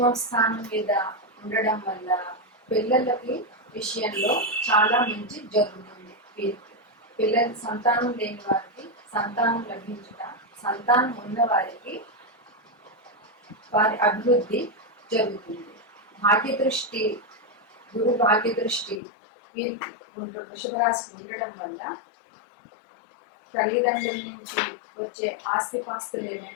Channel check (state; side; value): drops out; right; at 19.0 s